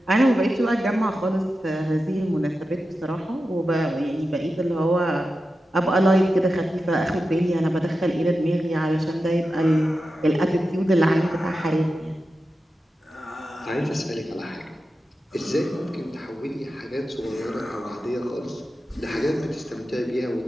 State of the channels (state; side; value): normal; both; correlation 0.92